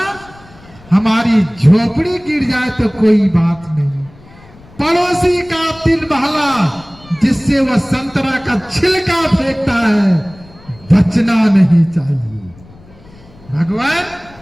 हमारी झोपड़ी गिर जाए तो कोई बात नहीं, पड़ोसी का 3 महला जिससे वह संतरा का छिलका फेंकता है, बचना नहीं चाहिए। भगवान,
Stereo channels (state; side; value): noise; left; rumble, 24 dB below the sound